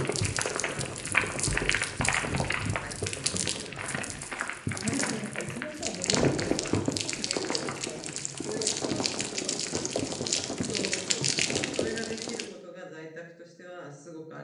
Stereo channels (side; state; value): both; identical; correlation 1.00